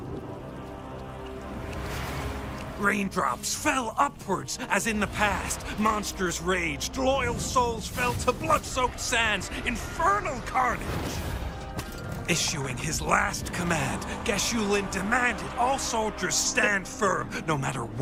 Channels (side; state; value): both; identical; correlation 1.00